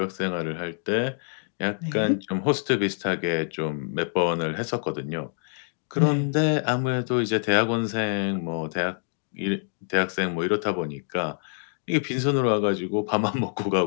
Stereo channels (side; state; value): right; silent; digital silence